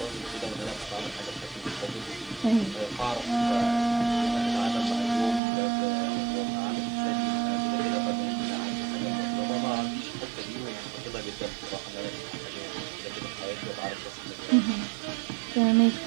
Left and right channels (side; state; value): left; drops out; at 5.4 s